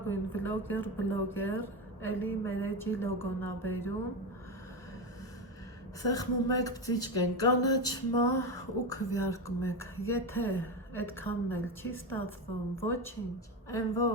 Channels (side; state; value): both; normal; correlation 0.16